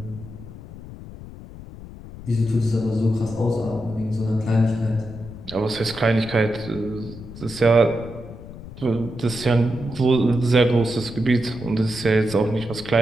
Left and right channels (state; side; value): noise; left; rumble, 14 dB below the sound